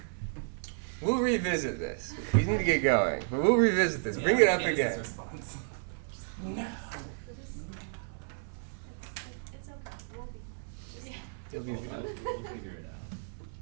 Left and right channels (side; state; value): left; silent; 56 dB below the other